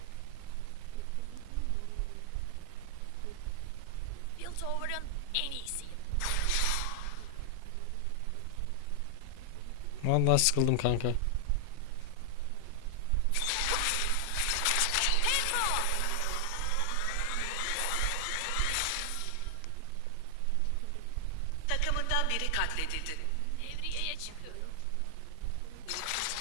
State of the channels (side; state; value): both; different; correlation 0.00